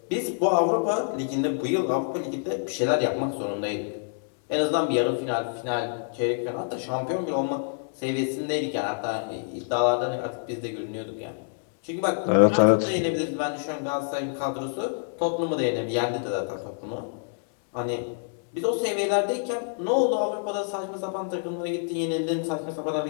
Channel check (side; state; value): right; silent; digital silence